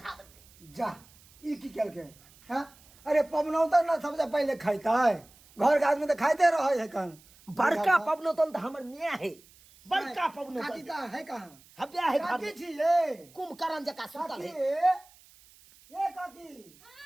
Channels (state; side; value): noise; right; hiss, 26 dB below the sound